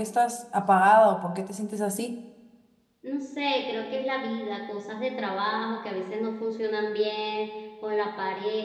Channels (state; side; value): identical; both; correlation 1.00